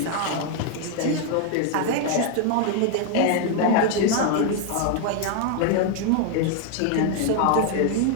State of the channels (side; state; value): both; different; correlation 0.00